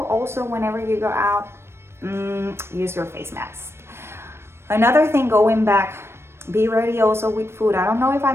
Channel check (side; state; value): left; late; 0.12 ms